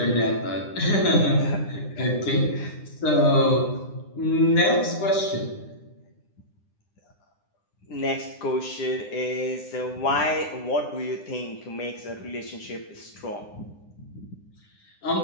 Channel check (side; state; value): right; late; 9.9 ms